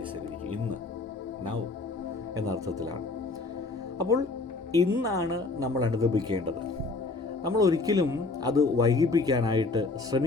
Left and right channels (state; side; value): quieter; right; 3.6 dB